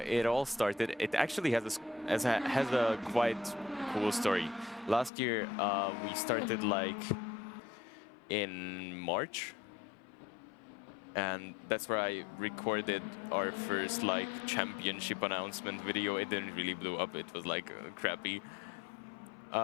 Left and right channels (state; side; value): drops out; right; at 5.1 s